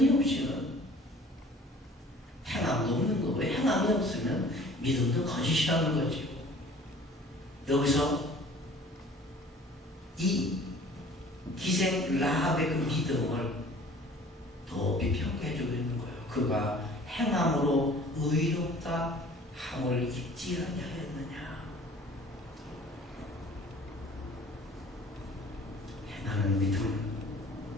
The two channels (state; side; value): normal; both; correlation 0.49